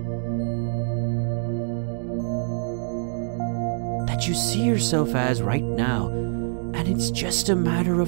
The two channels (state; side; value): silent; left; digital silence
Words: That you see yourself as right now, and it's just a matter